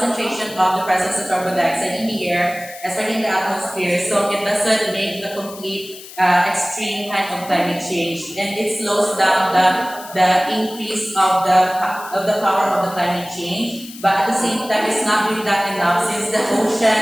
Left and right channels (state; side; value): noise; left; hiss, 16 dB below the sound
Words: of the presence of carbon dioxide in the air, especially in the atmosphere, so it doesn't make the complete extreme kind of climate change, and it slows down the increase of the power of the climate change. But at the same time, it's not really that enough since the